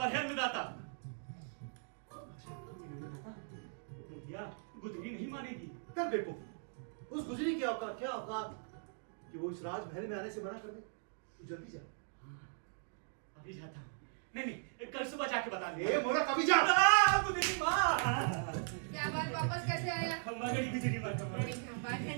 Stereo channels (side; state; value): left; silent; digital silence